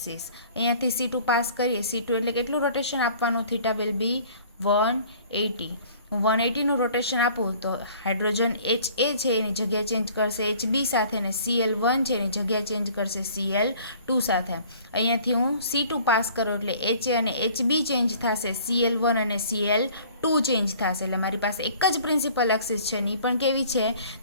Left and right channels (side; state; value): both; inverted; correlation -0.52